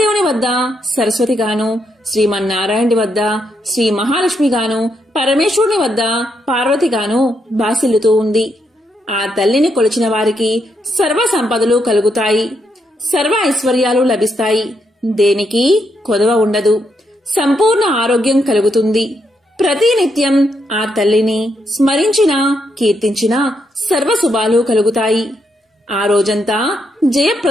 వద్ద సరస్వతిగాను, శ్రీమన్నారాయణుడి వద్ద శ్రీ మహాలక్ష్మిగాను, పరమేశ్వరుని వద్ద పార్వతిగాను బాసిల్లుతూ ఉంది. ఆ తల్లిని కొలిచిన వారికి సర్వ సంపదలు కలుగుతాయి, సర్వ ఐశ్వర్యాలు లభిస్తాయి. దేనికి కొదవ ఉండదు. సంపూర్ణ ఆరోగ్యం కలుగుతుంది. ప్రతినిత్యం ఆ తల్లిని స్మరించినా కీర్తించినా సర్వశుభాలు కలుగుతాయి. ఆ రోజంతా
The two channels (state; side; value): normal; both; correlation 0.79